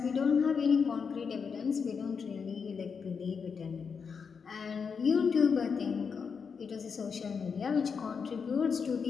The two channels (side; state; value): right; quieter; 5.9 dB